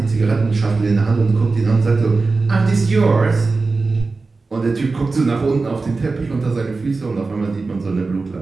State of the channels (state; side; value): quieter; left; 3.9 dB